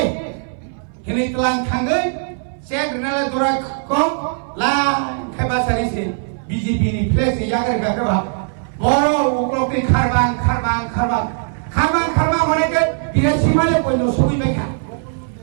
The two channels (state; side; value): silent; left; 61 dB below the other